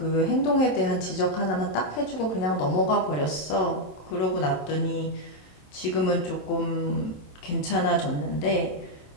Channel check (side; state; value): right; late; 27 ms